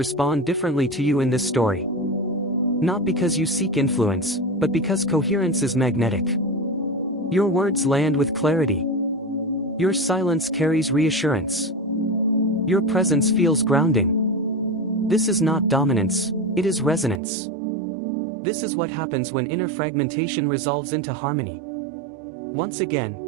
differently to you in this story. Not because you seek influence, but because coherence is magnetic. Your words land with clarity. Your silence carries reassurance. Your presence feels grounding. This is not dominance, it is resonance. This is what happens when inner fragmentation resolves into harmony. Once again,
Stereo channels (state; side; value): drops out; left; at 17.2 s